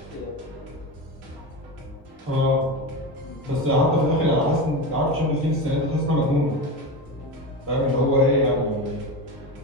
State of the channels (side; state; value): both; normal; correlation 0.22